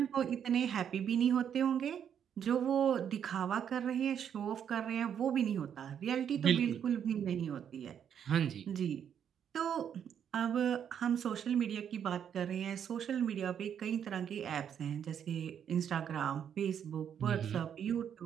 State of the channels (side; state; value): left; quieter; 8.6 dB